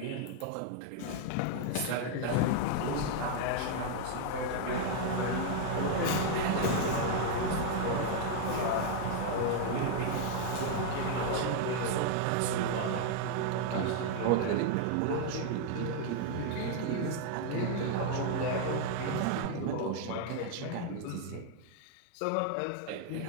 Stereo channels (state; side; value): different; both; correlation 0.00